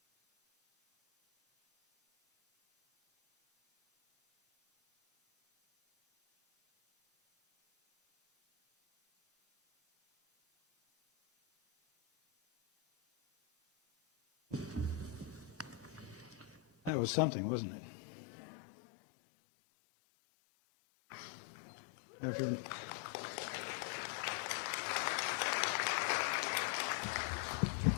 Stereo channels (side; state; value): right; drops out; at 16.9 s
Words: That was something, wasn't it?